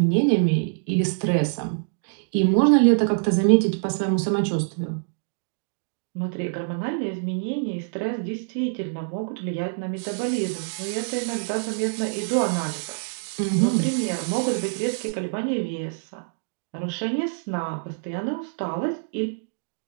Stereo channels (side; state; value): left; silent; digital silence